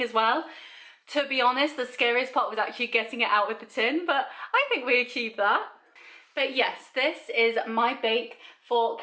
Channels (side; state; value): both; identical; correlation 1.00